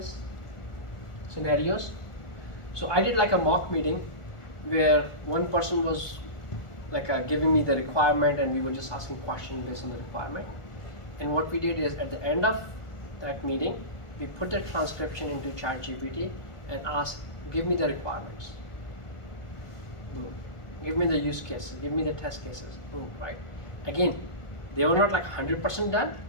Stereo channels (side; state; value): right; late; 1.4 ms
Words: scenarios. So I did like a mock meeting where one person was like giving me the requirement and we were just asking questions based on the requirement. And what we did is at the end of that meeting, we put the transcription into ChatGPT and asked, give me the requirements. Boom. Give me the use cases, give me the test cases. Boom, right? Again, they were not like 100% done,